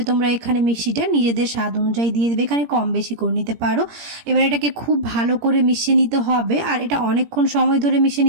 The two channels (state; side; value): late; left; 17 ms